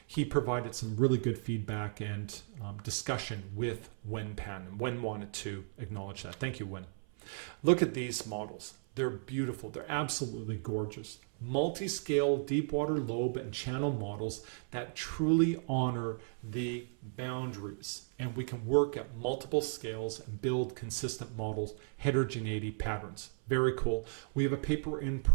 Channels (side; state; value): left; silent; 54 dB below the other